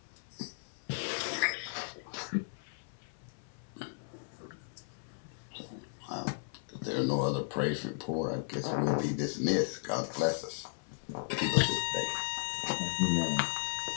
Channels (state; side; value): silent; right; 54 dB below the other